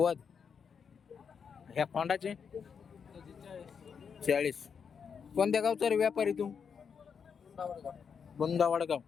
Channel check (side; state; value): right; quieter; 6.6 dB